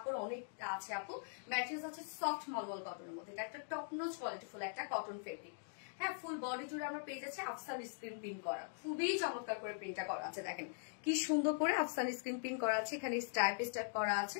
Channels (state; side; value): silent; right; digital silence